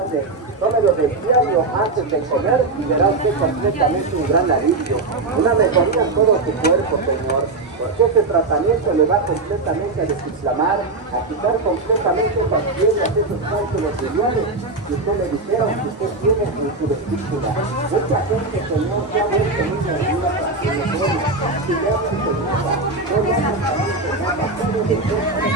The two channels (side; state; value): left; quieter; 3.4 dB